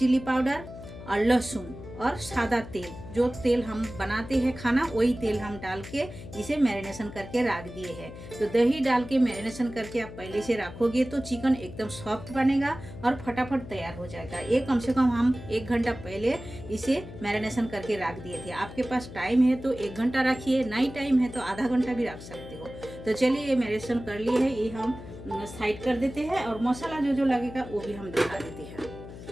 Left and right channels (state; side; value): noise; left; hum, 13 dB below the sound